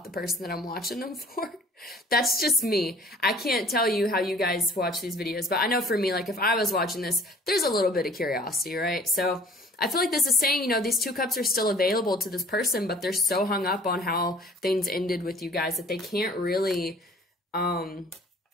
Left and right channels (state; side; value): normal; both; correlation 0.52